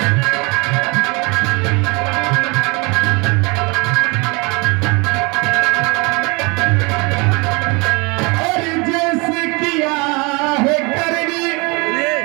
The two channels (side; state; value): left; quieter; 28.6 dB